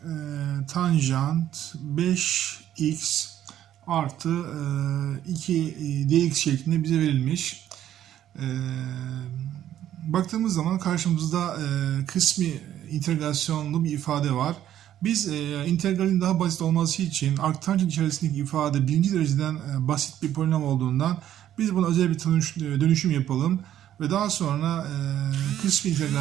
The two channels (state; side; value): quieter; left; 11.5 dB